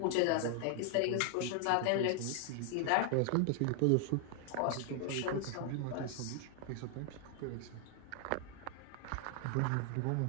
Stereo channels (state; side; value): different; both; correlation 0.00